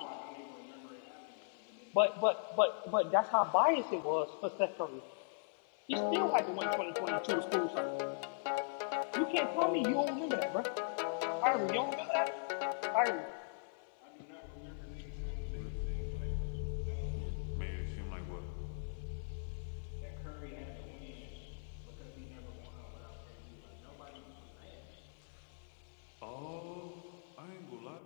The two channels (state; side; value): silent; right; digital silence